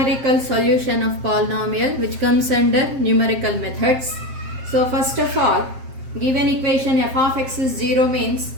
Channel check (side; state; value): left; late; 7.6 ms